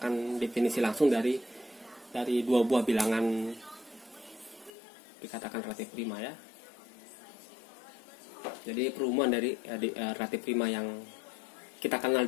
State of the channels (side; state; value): right; drops out; at 4.7 s